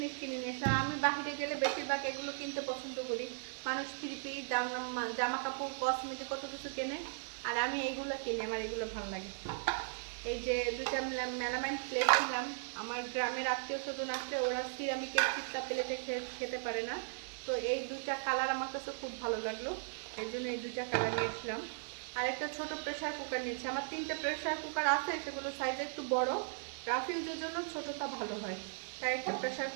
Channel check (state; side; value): silent; left; 53 dB below the other